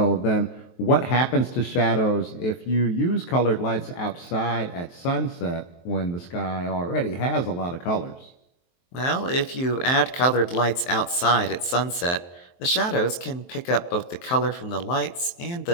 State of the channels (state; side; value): late; right; 23 ms